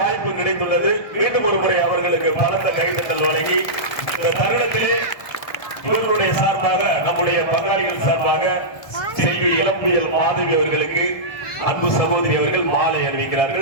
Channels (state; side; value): late; right; 1.2 ms